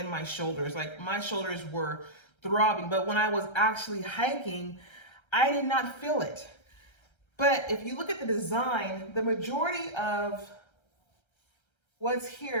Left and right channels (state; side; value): late; right; 1.3 ms